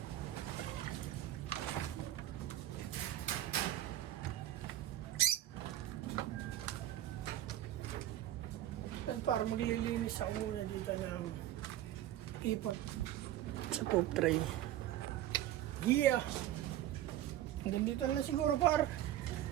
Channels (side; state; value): left; quieter; 13.0 dB